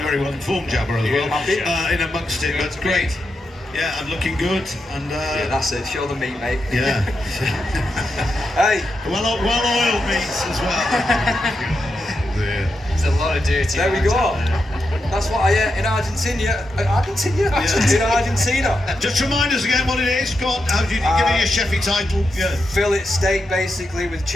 well informed jabber as well, in amongst it, but great. Yeah, and looking good, and yeah, that's it, show the meat, mate. Yeah. Hey. Well-oiled meats as well. There's a lot of dirty. There we go. That's what I ate in Argentina. In Argentina. Just remind us again what it is. Go on, how do you give it your chefy title? Yeah. Fillet steak, basically, with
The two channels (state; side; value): normal; both; correlation 0.86